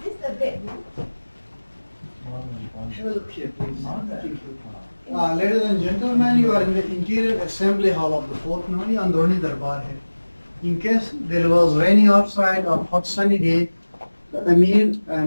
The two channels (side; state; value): both; inverted; correlation -1.00